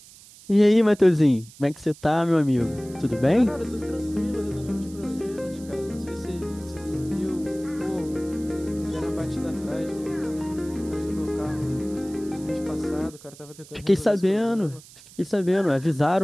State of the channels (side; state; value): right; noise; hiss, 21 dB below the sound